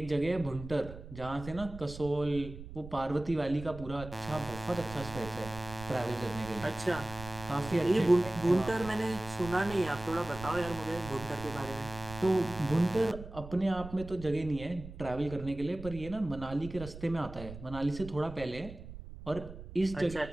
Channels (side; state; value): right; noise; rumble, 13 dB below the sound